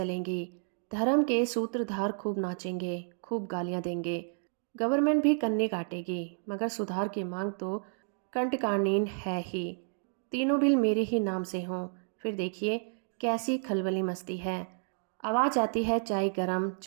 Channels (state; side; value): silent; left; 57 dB below the other